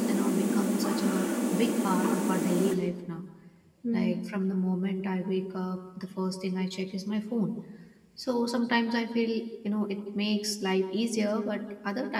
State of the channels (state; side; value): identical; both; correlation 1.00